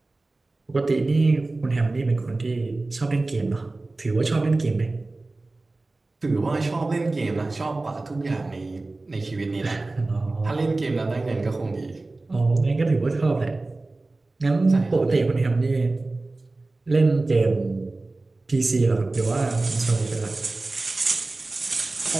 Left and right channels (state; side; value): quieter; left; 3.2 dB